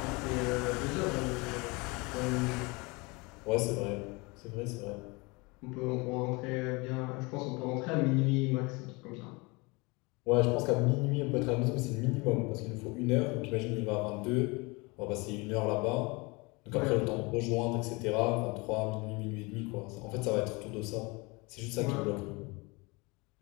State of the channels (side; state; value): right; quieter; 26.7 dB